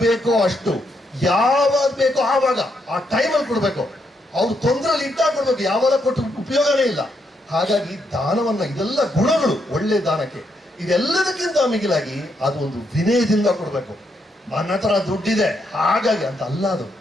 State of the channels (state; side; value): normal; both; correlation 0.78